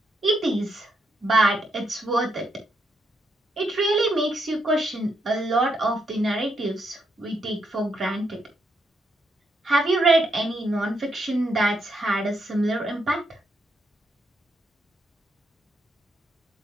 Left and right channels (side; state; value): both; normal; correlation 0.78